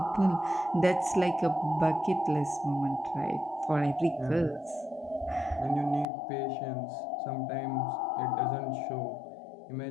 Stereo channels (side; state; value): right; drops out; at 6.1 s